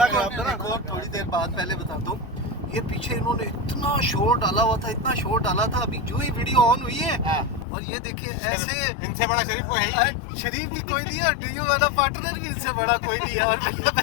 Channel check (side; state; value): right; drops out; at 7.7 s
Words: खराब था ना। एक और थोड़ी देर बाद पहले बताता हूँ। ये पीछे इन्होंने इतना शोर डाला हुआ था, इतना शोर डाला था, अभी जो ही वीडियो ऑन हुई है और ये देखिए ऐसे, इनसे बड़ा शरीफ कोई है ही। शरीफ भी कोई नहीं है और डीयू वाला पार्टनर भी इनसे बड़ा कोई नहीं है। और